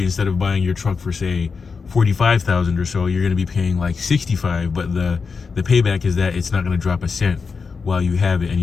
instead of buying your truck for say 45,000 or so, you're going to be paying like 65. But the payback is that it's not going to drop a cent while you have it, and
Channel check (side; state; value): right; quieter; 5.1 dB